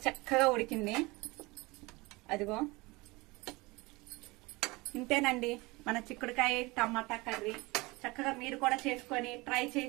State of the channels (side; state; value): left; quieter; 23.6 dB